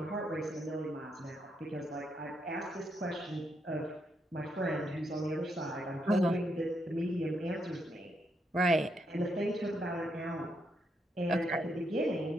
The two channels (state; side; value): normal; both; correlation 0.79